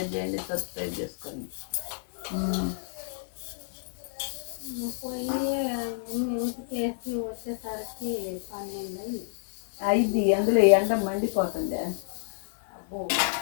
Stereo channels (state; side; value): silent; right; digital silence